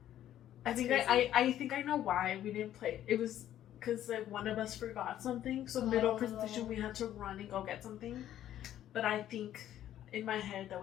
I think I know why we didn't play. It was because like one of us forgot something. So middle presentation we had to run and go get something. But I think in my head that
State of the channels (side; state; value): right; quieter; 11.8 dB